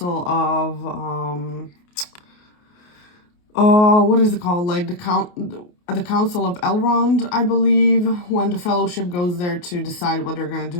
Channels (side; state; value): right; late; 28 ms